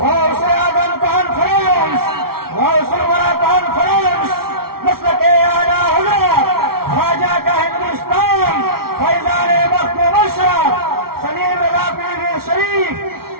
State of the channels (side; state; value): left; late; 0.94 ms